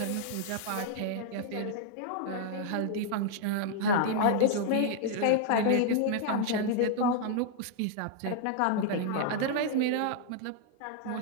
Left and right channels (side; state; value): both; different; correlation 0.00